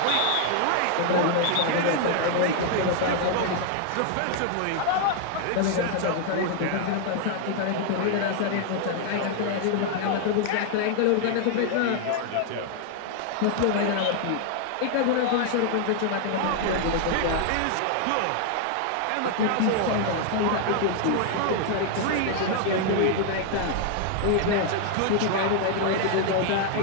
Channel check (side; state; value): both; different; correlation 0.00